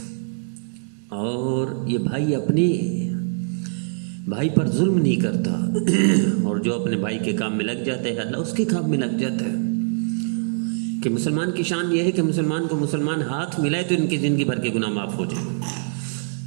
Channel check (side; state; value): left; silent; digital silence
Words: اور یہ بھائی اپنے بھائی پر ظلم نہیں کرتا، اور جو اپنے بھائی کے کام میں لگ جاتا ہے اللہ اس کے کام میں لگ جاتا ہے۔ کہ مسلمان کی شان یہ ہے کہ مسلمان کو مسلمان ہاتھ ملائے تو ان کی زندگی بھر کے گناہ معاف ہو جائے۔